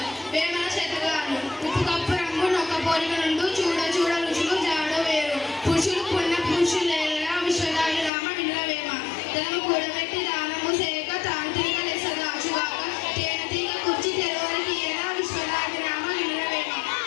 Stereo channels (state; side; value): drops out; right; at 8.1 s